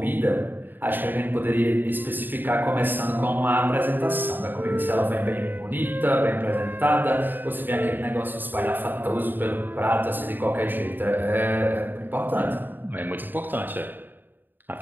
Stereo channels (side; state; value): left; late; 0.092 ms